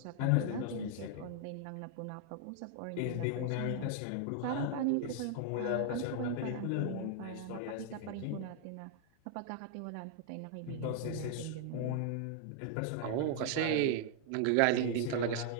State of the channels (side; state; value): both; different; correlation 0.00